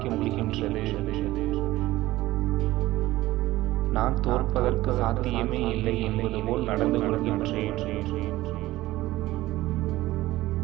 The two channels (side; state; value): left; quieter; 17.0 dB